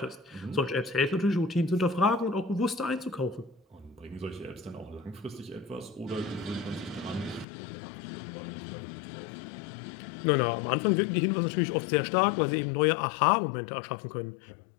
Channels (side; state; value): right; drops out; at 7.5 s